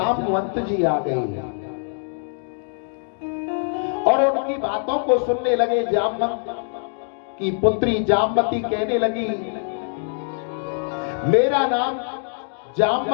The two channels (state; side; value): silent; right; digital silence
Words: जी आ गए और उनकी बातों को सुनने लगे। जामवंत की पुत्री जामवती कहने लगी, मेरा नाम